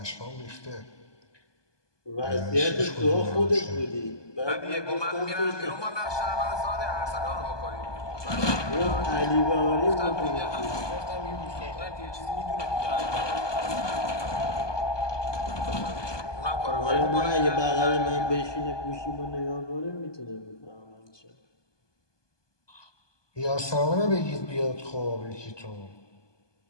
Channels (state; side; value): late; right; 1.2 ms